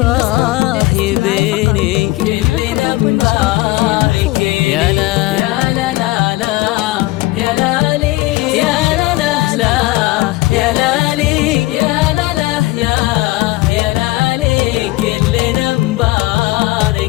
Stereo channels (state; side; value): quieter; right; 19.3 dB